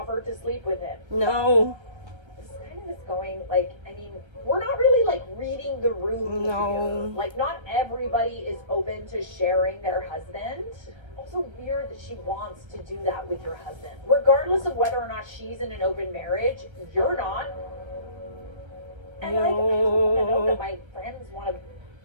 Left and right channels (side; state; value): left; late; 1.3 ms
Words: to sleep with him. No. This kind of is going, like, I mean, we're not really, like, reading the room No. here. Like, not everybody is open to sharing their husband. Also weird that she wants to do that with your husband. Regardless of whether or not she's in an open marriage, you're not. And, like, I don't know that my friends want to